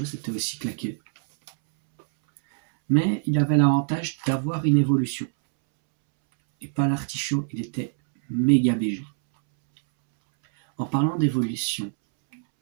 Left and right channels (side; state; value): left; silent; 62 dB below the other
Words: c'était aussi claqué. Mais il avait l'avantage d'avoir une évolution. Et pas l'artichaut, il était méga BG. En parlant d'évolution,